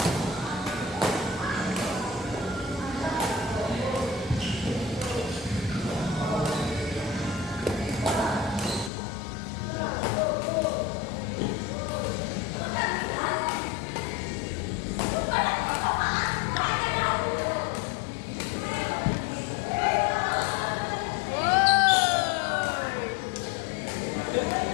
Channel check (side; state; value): right; drops out; at 8.9 s